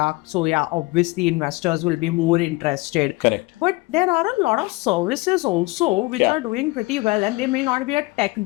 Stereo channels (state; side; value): quieter; right; 22.9 dB